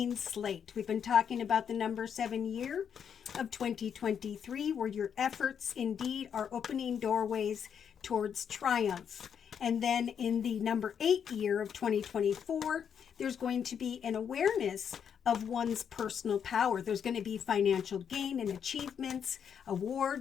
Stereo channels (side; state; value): right; quieter; 7.8 dB